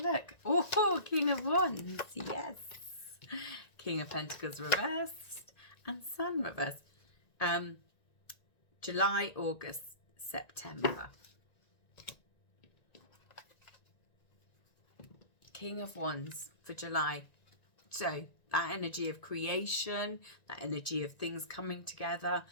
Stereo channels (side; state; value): right; late; 1.9 ms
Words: Oh, King of Wands, yes. King of Pentacles reversed and Sun reversed. July, August, September. King of Wands for July. So that energy of creation, that energy of things coming together.